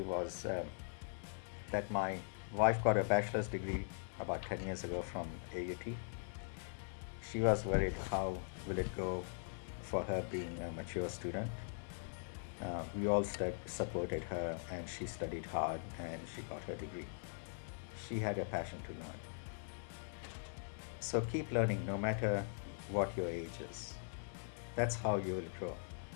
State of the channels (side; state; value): right; silent; digital silence